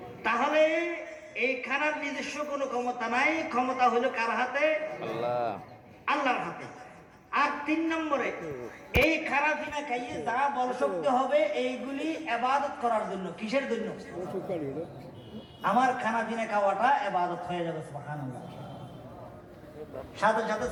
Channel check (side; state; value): both; identical; correlation 1.00